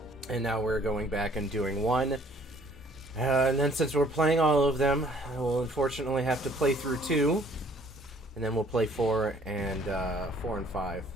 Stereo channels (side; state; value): both; normal; correlation 0.59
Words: And now we're going back and doing 1. And then since we're playing all of them, I will unfortunately have to play through 2. And then we'll play 4 and 5.